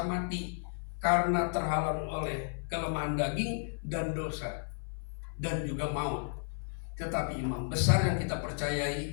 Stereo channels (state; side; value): silent; right; 56 dB below the other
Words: mati karena terhalang oleh kelemahan daging dan dosa dan juga maut. Tetapi imam besar yang kita